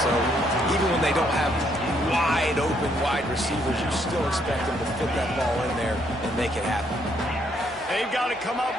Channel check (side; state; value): both; normal; correlation 0.71